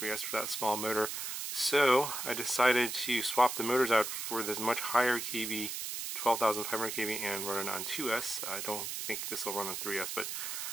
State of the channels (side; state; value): right; noise; hiss, 4 dB below the sound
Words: for that small motor. So I decided to swap the motors out for this much higher kV, 12,500 kV, and run it on 2S. I don't think this will run on 3S, but